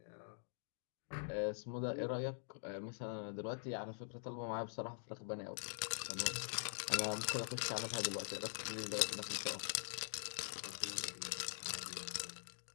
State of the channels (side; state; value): right; silent; digital silence